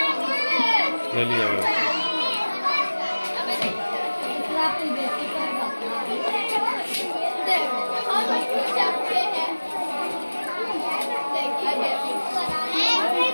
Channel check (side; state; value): both; inverted; correlation -1.00